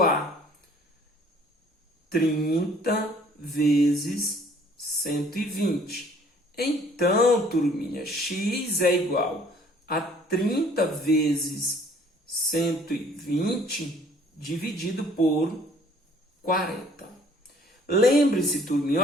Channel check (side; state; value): both; normal; correlation 0.57